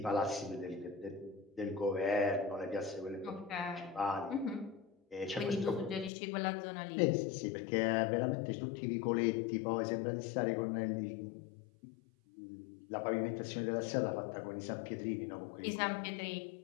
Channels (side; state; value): right; drops out; at 6.1 s